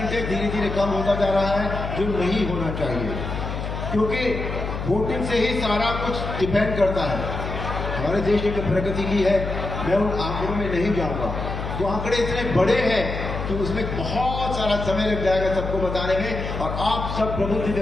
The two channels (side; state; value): left; noise; hum, 5 dB below the sound